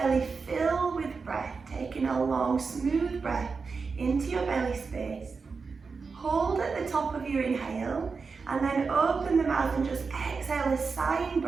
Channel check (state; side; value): quieter; left; 4.8 dB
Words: fill with breath, taking a long, smooth breath into your belly space. Hold at the top of your inhale, and then open the mouth and just exhale a sighing